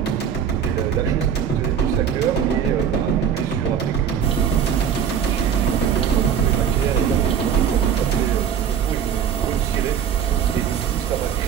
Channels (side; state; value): left; quieter; 8.2 dB